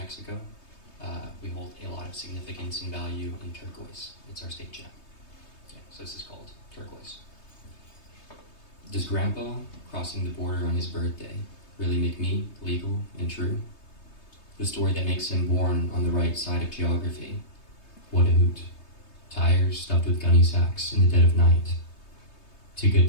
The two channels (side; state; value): right; late; 3.2 ms